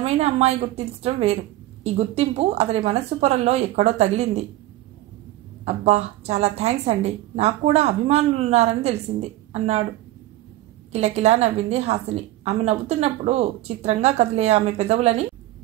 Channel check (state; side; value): quieter; left; 15.8 dB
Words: అమ్మాయి గుర్తించడం వేరు. ఈ గుర్తింపు అతడి మనస్సు పొరల్లో ఎక్కడో తగిలింది. అబ్బా, చాలా థ్యాంక్స్ అండి, నాకు కూడా అభిమానులున్నారని తెలిసింది అన్నాడు. కిలకిలా నవ్వింది హాసిని. ఆమె నవ్వుతున్నప్పుడు చిత్రంగా కదిలే ఆమె పెదవులని